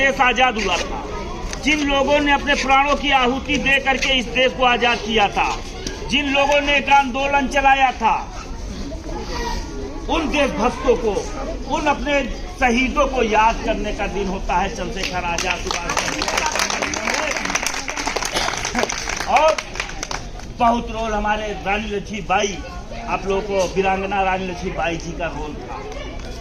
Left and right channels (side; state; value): both; identical; correlation 1.00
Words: आजाद हुआ था, जिन लोगों ने अपने प्राणों की आहुति दे करके इस देश को आजाद किया था, जिन लोगों ने एक आंदोलन चलाया था, उन देशभक्तों को, उन अपने शहीदों को याद करने का दिन होता है चंद्रशेखर आजाद और बहुत रोल हमारे रानी लक्ष्मीबाई, आप लोगों को वीरांगना रानी लक्ष्मीबाई जी का रोल था।